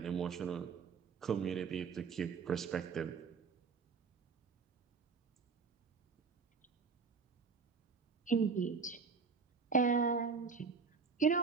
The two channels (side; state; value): left; quieter; 5.3 dB